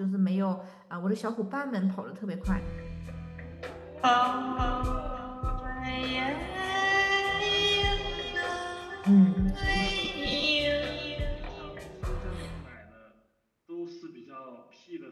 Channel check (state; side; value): identical; both; correlation 1.00